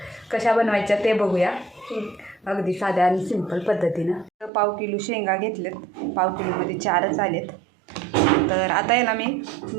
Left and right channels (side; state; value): left; drops out; at 4.5 s